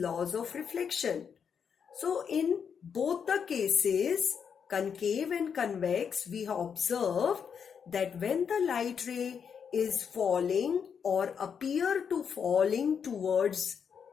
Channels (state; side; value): quieter; right; 7.0 dB